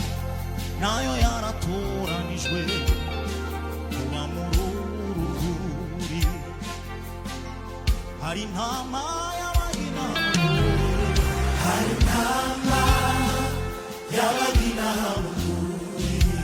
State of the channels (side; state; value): both; identical; correlation 1.00